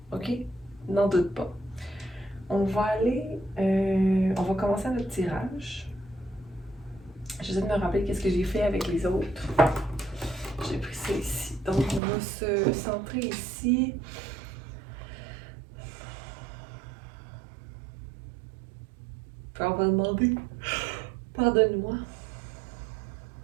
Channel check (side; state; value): left; drops out; at 12.0 s